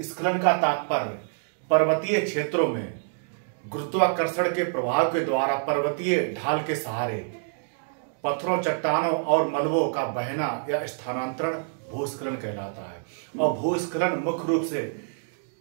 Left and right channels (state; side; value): silent; left; digital silence